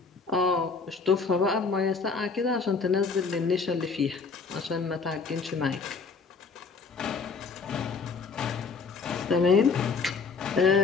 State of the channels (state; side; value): quieter; right; 4.8 dB